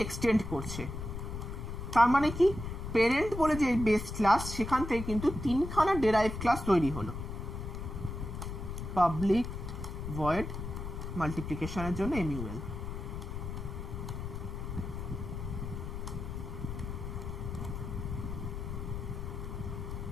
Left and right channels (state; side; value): noise; left; rumble, 6 dB below the sound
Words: এক্সটেন্ড করছে। তার মানে কি, প্যারেন্ট বলে যে বেস ক্লাস সেখান থেকে কিন্তু তিনখানা ডেরাইভ ক্লাস তৈরি হলো। পাবলিক ভয়েড মাল্টিপ্লিকেশনের জন্য এমইউএল,